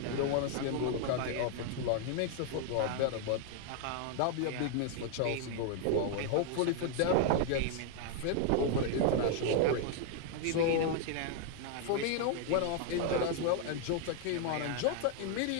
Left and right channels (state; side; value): different; both; correlation 0.00